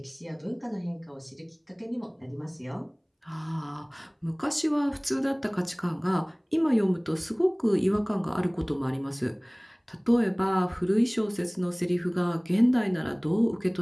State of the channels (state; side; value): identical; both; correlation 1.00